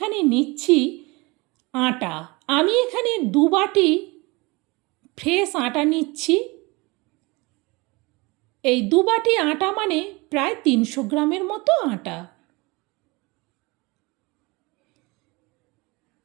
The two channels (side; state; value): left; quieter; 25.1 dB